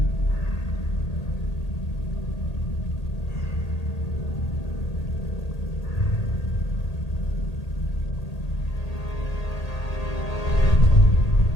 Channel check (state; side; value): late; right; 1.8 ms